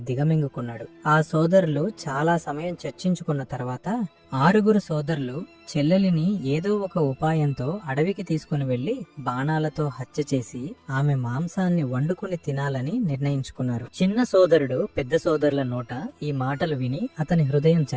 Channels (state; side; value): identical; both; correlation 1.00